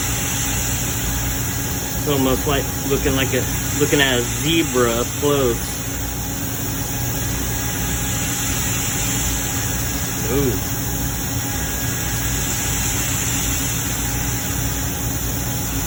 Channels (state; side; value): identical; both; correlation 1.00